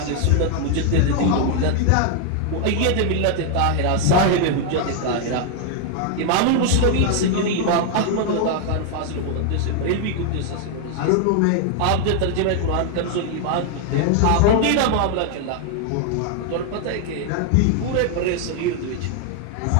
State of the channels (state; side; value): different; both; correlation 0.00